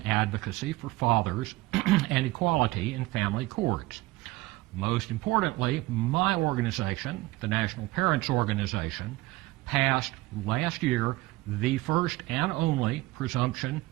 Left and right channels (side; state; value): left; quieter; 19.8 dB